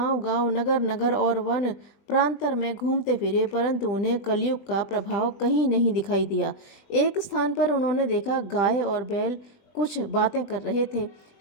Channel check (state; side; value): late; right; 20 ms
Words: नगर-नगर और वन प्रांतर में घूमते फिरे, परंतु उन्हें कलयुग का प्रभाव कहीं नहीं दिखाई दिया। एक स्थान पर उन्होंने देखा, गाय और बैल कुछ बातें कर रहे थे।